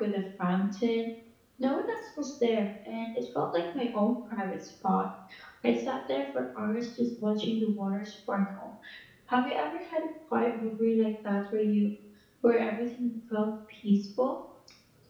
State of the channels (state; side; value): identical; both; correlation 1.00